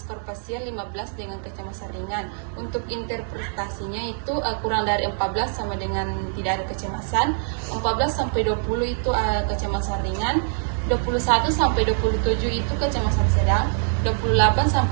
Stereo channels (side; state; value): left; silent; digital silence